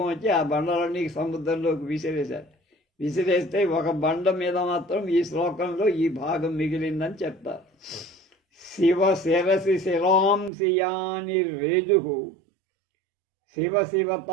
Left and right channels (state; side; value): drops out; left; at 10.5 s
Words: వచ్చి ఆ బండలన్నీ సముద్రంలోకి విసిరేశాడు. విసిరేస్తే ఒక బండ మీద మాత్రం ఈ శ్లోకంలో ఈ భాగం మిగిలిందని చెప్తారు. శివ శిరసి శిరాంశియాని రేజు శివ